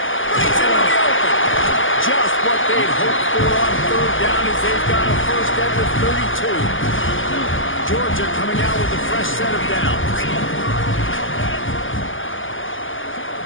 Brings it on the open. Just what they'd hoped for on third down as they've got a first at the 32. Georgia coming out with a fresh set of downs.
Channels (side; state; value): right; late; 0.58 ms